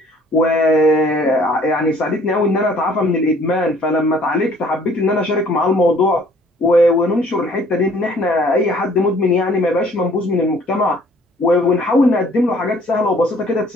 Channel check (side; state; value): both; normal; correlation 0.57